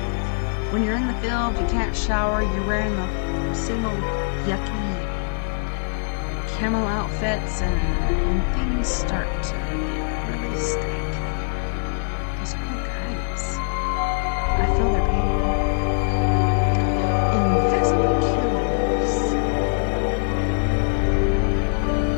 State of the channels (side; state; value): right; silent; 64 dB below the other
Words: When you're in the field, you can't shower, you're wearing the same old yucky camel outfits, and things start to get really stank. Those poor guys. I feel their pain. Invisible killers.